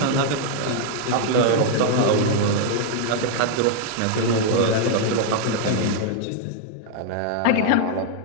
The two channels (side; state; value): both; different; correlation 0.00